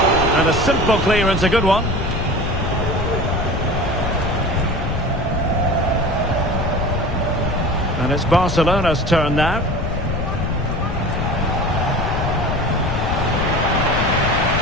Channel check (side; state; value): left; noise; rumble, 3 dB below the sound